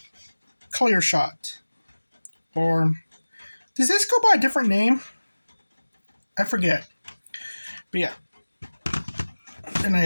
Clearshot. Or, does this go by a different name? I forget. But yeah. And I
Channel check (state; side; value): inverted; both; correlation -1.00